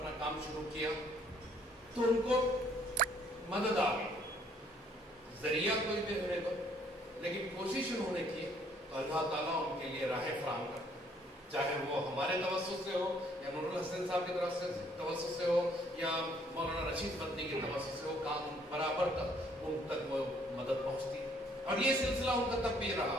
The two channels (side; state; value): both; normal; correlation 0.64